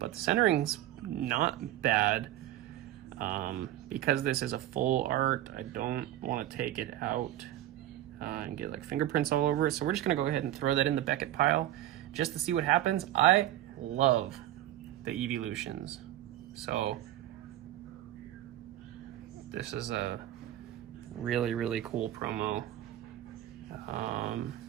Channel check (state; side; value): quieter; left; 13.5 dB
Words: the centering's not bad. Because this is a full art, I don't want to take it out and get like fingerprints all over it. So we're just gonna go ahead and throw that in the Beckett pile just to see what happens. I love the Evolutions. So This is a really, really cool promo.